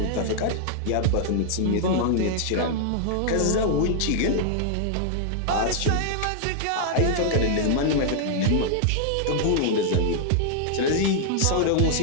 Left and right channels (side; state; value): both; different; correlation -0.01